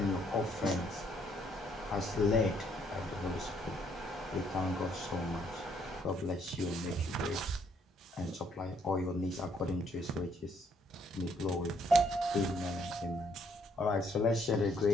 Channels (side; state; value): both; normal; correlation 0.69